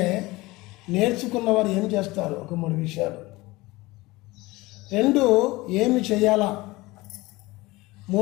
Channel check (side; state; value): right; quieter; 20.9 dB